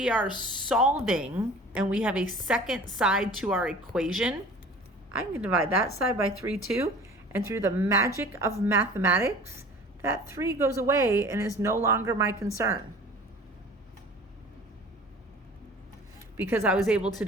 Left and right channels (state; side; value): normal; both; correlation 0.43